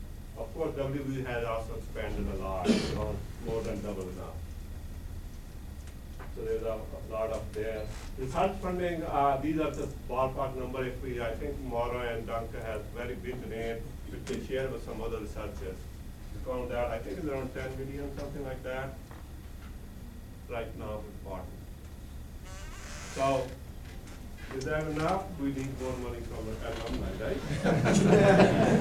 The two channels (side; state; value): both; identical; correlation 1.00